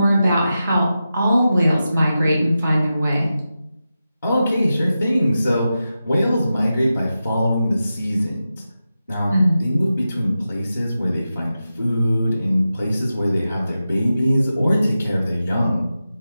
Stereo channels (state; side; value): inverted; both; correlation -0.91